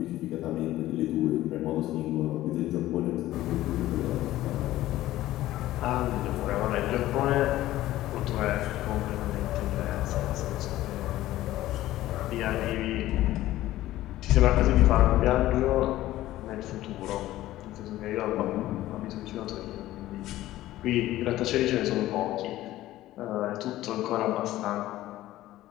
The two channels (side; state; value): right; quieter; 15.2 dB